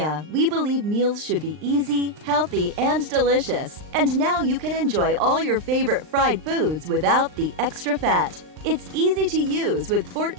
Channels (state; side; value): late; left; 39 ms